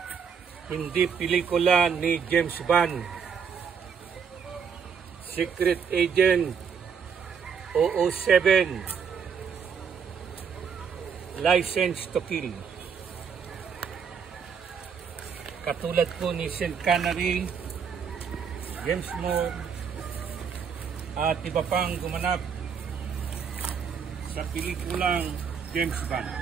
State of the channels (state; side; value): quieter; left; 6.6 dB